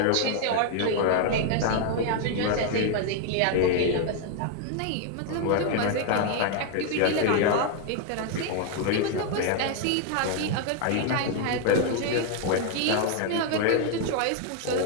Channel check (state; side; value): different; both; correlation 0.00